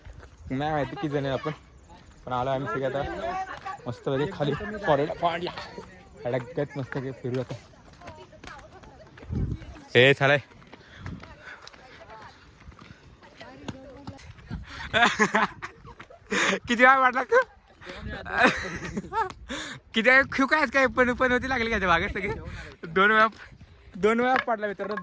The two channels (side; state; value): both; identical; correlation 1.00